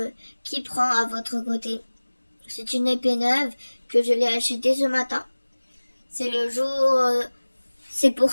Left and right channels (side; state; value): both; inverted; correlation -1.00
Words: qui prend à votre côté? C'est une épée neuve que je l'ai achetée ce matin. C'est le jour, c'est pour